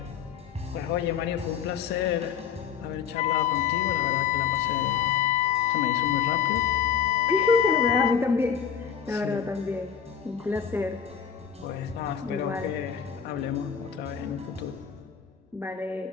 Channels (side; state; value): right; quieter; 7.7 dB